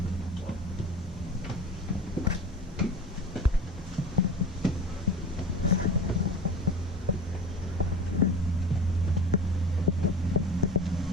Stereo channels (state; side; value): normal; both; correlation 0.35